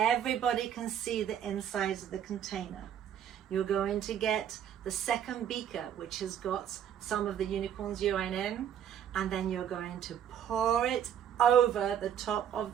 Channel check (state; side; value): quieter; left; 9.5 dB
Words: can see the insides of the container. You're going to get the second beaker, which has got some of the unicorn's urine in, and then you're going to pour it over the top of